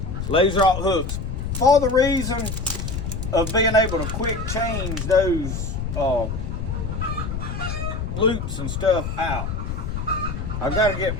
laser-alt hooks for the reason of being able to quick change those loops and stuff out. I got to get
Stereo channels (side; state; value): left; noise; rumble, 4 dB below the sound